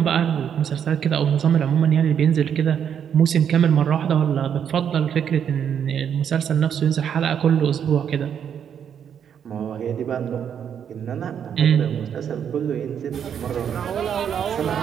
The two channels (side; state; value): left; quieter; 8.3 dB